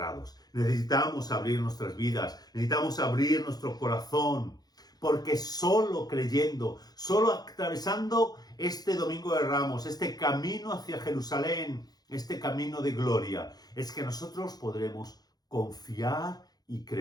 Necesitamos abrir nuestras vidas, necesitamos abrir nuestro corazón, porque solo creyendo, solo atravesando este Domingo de Ramos, este camino hacia Jerusalén, este camino de gloria, es que nosotros podremos confiar y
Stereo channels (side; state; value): right; late; 0.19 ms